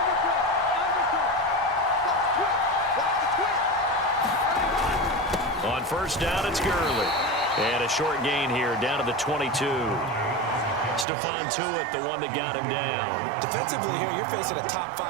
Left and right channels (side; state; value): left; drops out; at 11.1 s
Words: On first down, it's Gurley. And a short gain here down to the 22. Stephon Tuitt, the one that got him down. Defensively here, you're facing a top